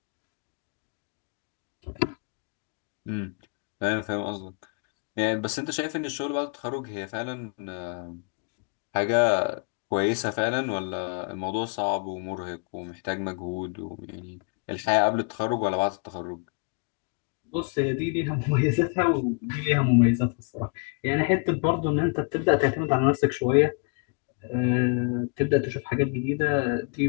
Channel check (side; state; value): right; quieter; 38.5 dB